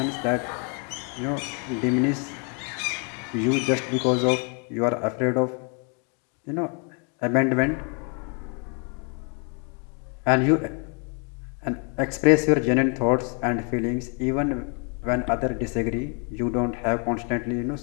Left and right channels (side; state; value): right; quieter; 37.9 dB